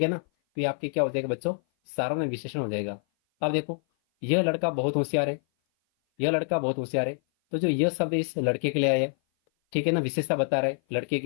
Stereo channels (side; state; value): right; silent; 56 dB below the other